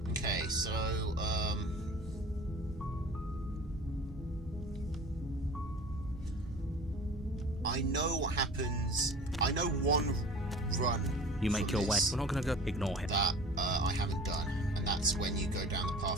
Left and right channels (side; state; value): both; normal; correlation 0.41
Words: Okay, so, I know what happens. I know one run. You make your way. We're not going to go ignore him. That I haven't done, and that's when you go down the